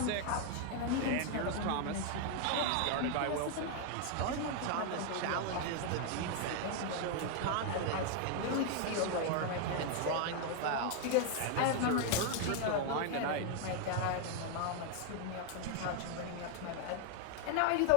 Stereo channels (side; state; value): both; different; correlation 0.00